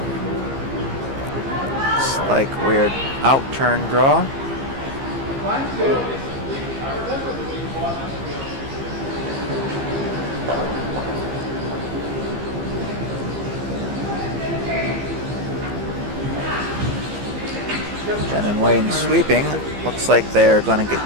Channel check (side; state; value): left; late; 15 ms